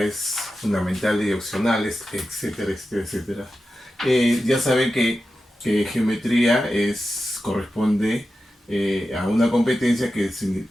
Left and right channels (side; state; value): both; normal; correlation 0.92